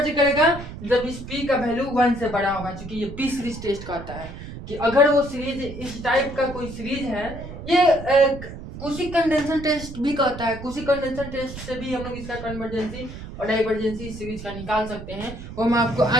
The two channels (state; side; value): noise; right; rumble, 11 dB below the sound